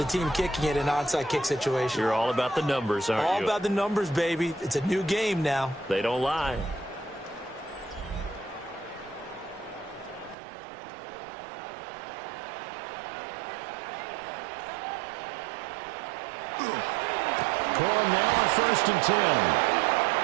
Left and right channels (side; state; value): left; drops out; at 10.4 s